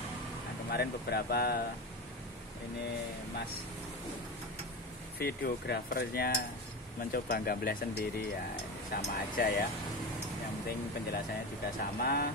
kemarin beberapa ini Mas videografernya mencoba gambar sendiri ya, sama aja ya. Yang penting penjelasannya juga sama.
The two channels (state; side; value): normal; both; correlation 0.23